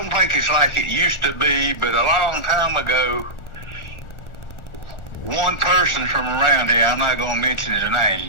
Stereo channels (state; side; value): late; right; 1.4 ms